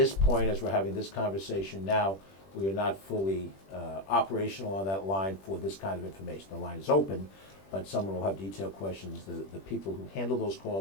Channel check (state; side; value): late; right; 21 ms